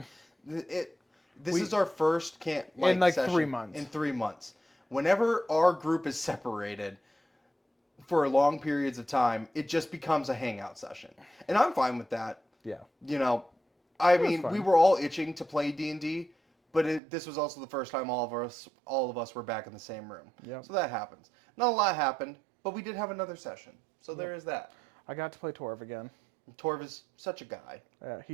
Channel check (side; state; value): left; drops out; at 17.0 s